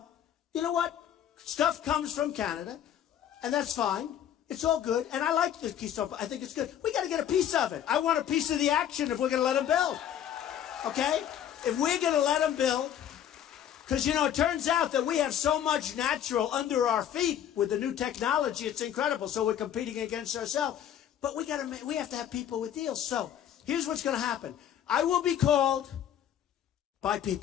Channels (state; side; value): quieter; right; 10.1 dB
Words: you know what? Stuff comes from Canada, and that's fine. It's all good, and I like the Keystone. I think it's good. We got to get a piece of it. I want a piece of the action if we're going to let them build. Okay? If we're going to let them build, because, you know, it turns out that we have so much natural under our feet with the new technology. It's incredible. So we're competing against ourselves. But we have to have people with deals. So here's what's going to happen. I will be called by